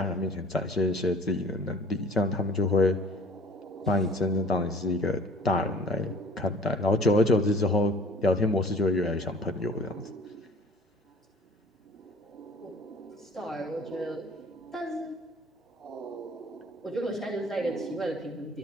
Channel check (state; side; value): normal; both; correlation 0.49